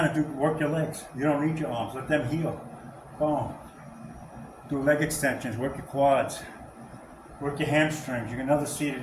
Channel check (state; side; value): identical; both; correlation 1.00